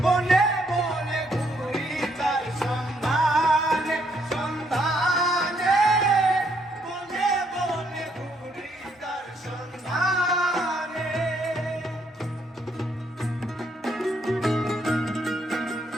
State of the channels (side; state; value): both; normal; correlation 0.72